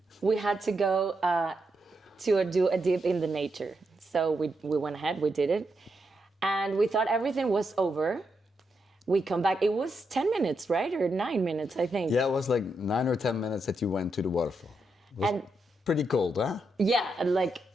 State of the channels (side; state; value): both; normal; correlation 0.83